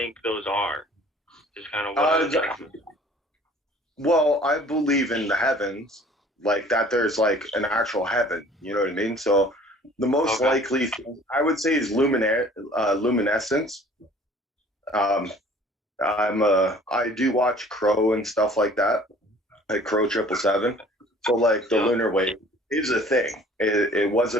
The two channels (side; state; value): both; normal; correlation 0.51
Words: those are? Just kind of well, I believe in the heavens, like that there's like an actual heaven, you know what I mean? So the most likely thing I would say is luminescence. I do watch Crow and stuff like that, like Crow 777. So like the lunar wave is a thing. It was